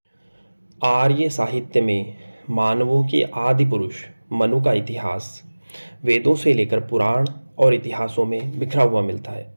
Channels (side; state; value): both; inverted; correlation -1.00